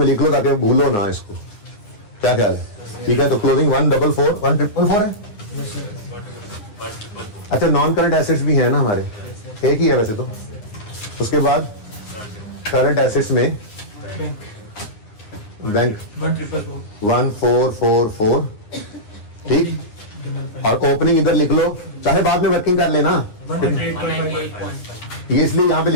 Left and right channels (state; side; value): late; right; 9.6 ms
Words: लिख लो ताकि भूलो ना इसको, क्या ख्याल है? ठीक है, तो क्लोजिंग 144 है। अच्छा नॉन करंट एसेट्स भी हैं ना हमारे, एक ही है वैसे तो। उसके बाद करंट एसेट्स में बैंक 1444, ठीक। और ओपनिंग इधर लिख लो, चाहे बाद में वर्किंग कर लेना, ये इसलिए यहाँ पे